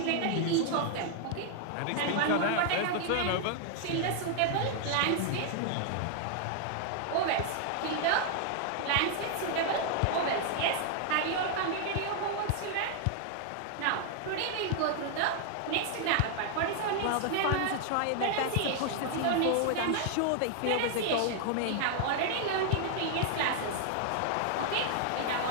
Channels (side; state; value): both; different; correlation 0.00